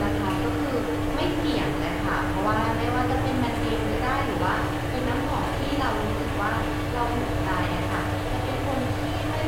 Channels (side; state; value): both; identical; correlation 1.00